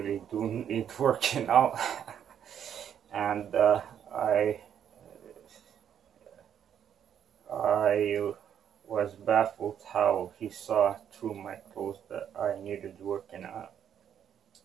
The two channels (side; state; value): left; quieter; 9.1 dB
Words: do need working out. And I was baffled how he saw through my clothes that I needed working out.